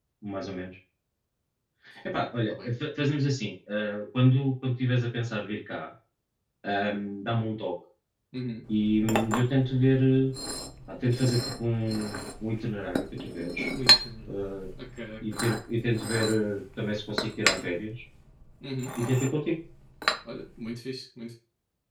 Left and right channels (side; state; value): both; identical; correlation 1.00